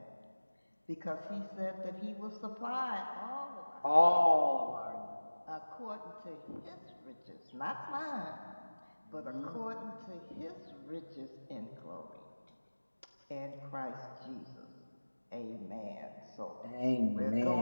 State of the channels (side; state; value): both; inverted; correlation -1.00